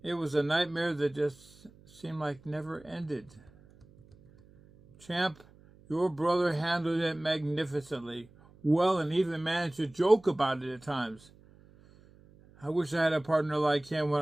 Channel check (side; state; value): right; noise; hum, 26 dB below the sound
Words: It was a nightmare that just seemed like never ended. Champ, your brother handled it magnificently, well, and even managed to joke about it at times. I wish I had a partner like him when